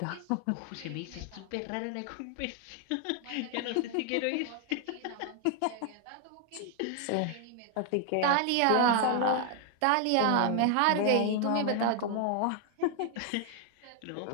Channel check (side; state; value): both; different; correlation 0.00